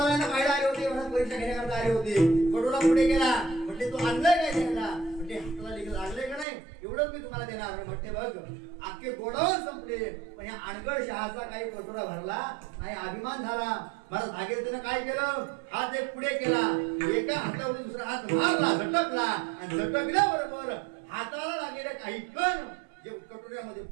पाहिजे आले होते. म्हणून परीक्षा घेण्याकरता आले होते. कटोरा पुढे केला. म्हटले तू आणलंय काय द्यायला? म्हटले हाताला लिहिलं लागलंय का नाही? एवढंच मी तुम्हाला देणार. म्हटले बघ अख्खे गोडावर संपले, पण या अनगड शहाचा काही कटोरा भरला नाही. अभिमान झाला. मला भागीरथीनं काय केलं? हात एक पुढे केला, एका हातावर दुसरा हात मारला, झटकला आणि झटकल्याबरोबर हाताला लागलेले काही कण जे कटोऱ्यामध्ये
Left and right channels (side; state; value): left; drops out; at 6.5 s